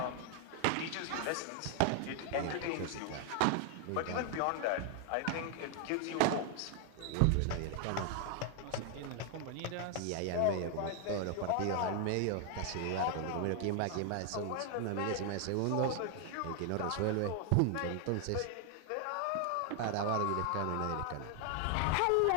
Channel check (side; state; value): both; different; correlation 0.00